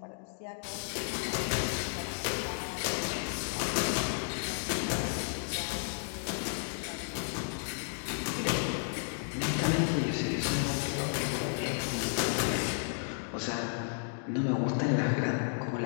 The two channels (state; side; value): silent; right; digital silence